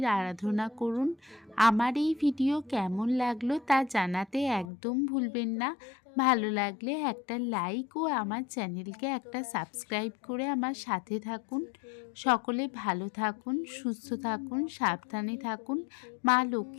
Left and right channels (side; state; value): right; drops out; at 4.7 s